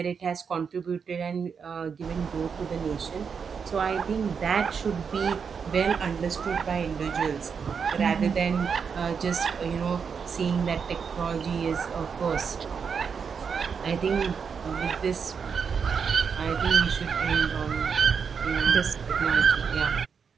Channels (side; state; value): left; quieter; 6.3 dB